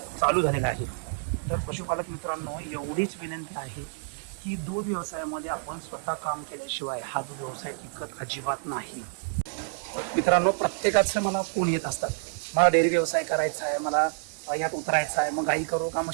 चालू झालेलं आहे. तर पशुपालक मित्रांनो, एवढीच विनंती आहे की दूध व्यवसायामध्ये आपण स्वतः काम केल्याशिवाय हा दूध व्यवसाय टिकत अजिबात नाही. मित्रांनो, प्रत्येकाचं मला फोन येत असतात, मला डेअरी व्यवसाय करायचा आहे, मला यात उतरायचं आहे, मग गाई करू का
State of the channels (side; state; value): left; silent; digital silence